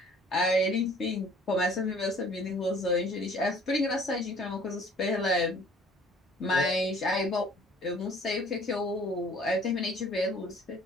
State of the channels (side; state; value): both; normal; correlation 0.54